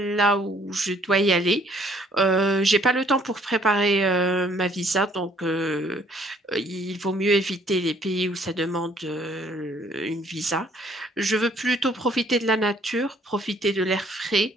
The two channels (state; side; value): normal; both; correlation 0.62